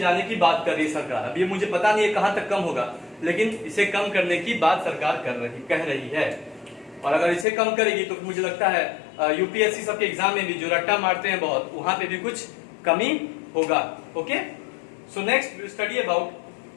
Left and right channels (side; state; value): right; drops out; at 7.5 s